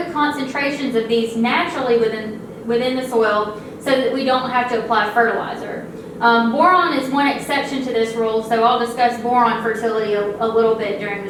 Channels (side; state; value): both; identical; correlation 1.00